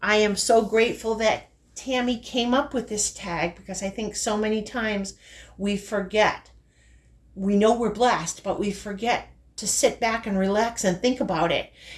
I am so grateful that Tammy came up with this tag because I think so many times we forget. We know we're blessed, but we forget to sit back and relax and think about it.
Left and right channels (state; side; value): identical; both; correlation 1.00